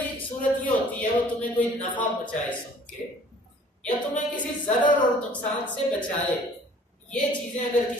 صورت یہ ہوتی ہے وہ تمہیں کوئی نفع پہنچائے سن کے، یا تمہیں کسی ضرر اور نقصان سے بچائے۔ یہ چیزیں اگر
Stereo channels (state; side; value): normal; both; correlation 0.53